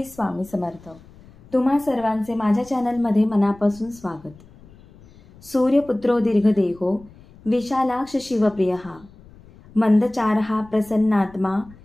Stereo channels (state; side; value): noise; left; rumble, 24 dB below the sound